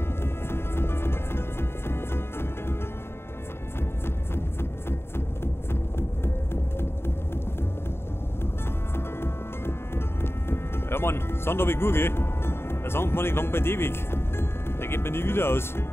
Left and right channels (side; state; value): right; late; 0.12 ms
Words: Ja Mann, Sand habe ich gut, gell? Der Sand man nicht lang bei dir weg. Der geht mir nie wieder aus.